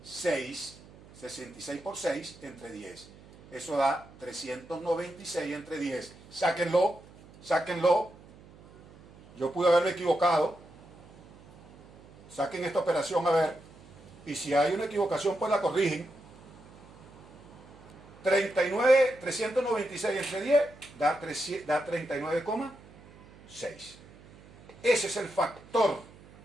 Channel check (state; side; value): noise; right; hum, 22 dB below the sound